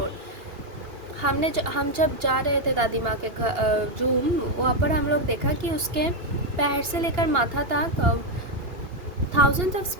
हम जब जा रहे थे दादी माँ के रूम, वहाँ पर हम लोग देखा कि उसके पैर से लेकर माथा तक थाउजेंड्स ऑफ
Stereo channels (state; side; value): late; left; 2.8 ms